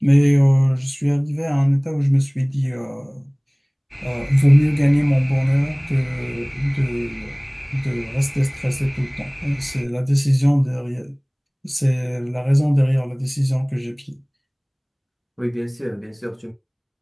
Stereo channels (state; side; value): identical; both; correlation 1.00